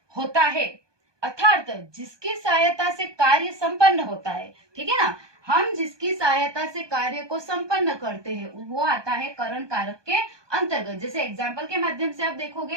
होता है, अर्थात जिसकी सहायता से कार्य संपन्न होता है। ठीक है ना, हम जिसकी सहायता से कार्य को संपन्न करते हैं वो आता है करण कारक के अंतर्गत। जैसे एग्जाम्पल के माध्यम से आप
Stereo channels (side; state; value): left; late; 1.2 ms